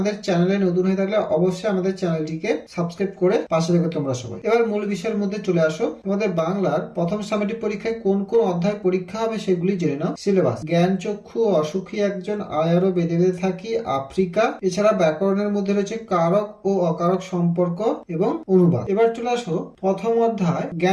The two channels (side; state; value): both; identical; correlation 1.00